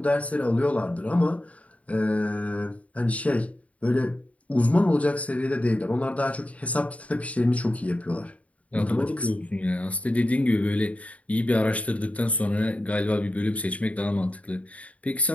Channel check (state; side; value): late; right; 0.067 ms